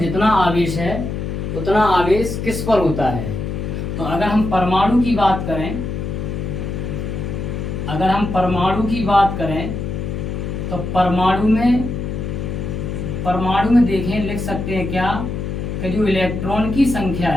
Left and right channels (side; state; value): left; noise; hum, 4 dB below the sound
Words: आवेश है उतना आवेश किस पर होता है। तो अगर हम परमाणु की बात करें, अगर हम परमाणु की बात करें तो परमाणु में देखें, लिख सकते हैं क्या कि जो इलेक्ट्रॉन की संख्या